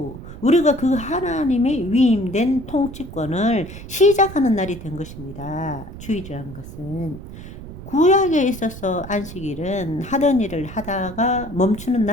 우리가 그 하나님의 위임된 통치권을 시작하는 날이 된 것입니다. 주일이라는 것은 구약에 있어서 안식일은 하던 일을 하다가 멈추는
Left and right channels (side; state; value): right; noise; rumble, 13 dB below the sound